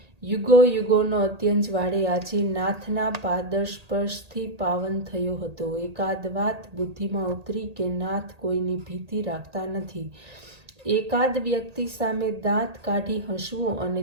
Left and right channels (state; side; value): late; left; 1.8 ms